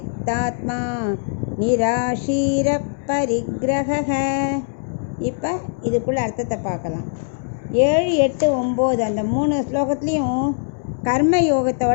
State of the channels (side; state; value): right; silent; 65 dB below the other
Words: நிராஷீர பரிக்ரஹ. இப்போ இதுக்குள்ள அர்த்தத்தை பார்க்கலாம். 7, 8, 9 அந்த 3 ஸ்லோகத்துலேயும் கர்ம